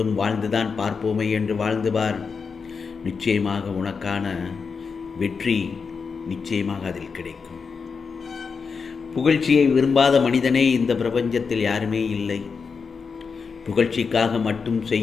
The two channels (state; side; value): quieter; right; 5.4 dB